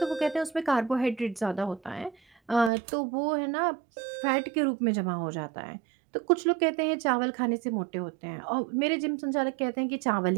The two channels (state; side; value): drops out; left; at 2.7 s